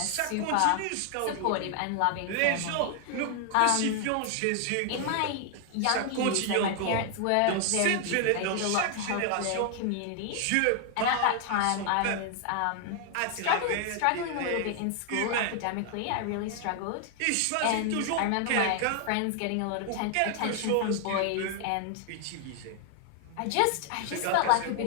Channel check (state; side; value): different; both; correlation 0.00